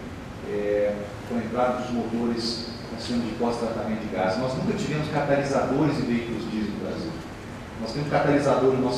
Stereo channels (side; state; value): both; identical; correlation 1.00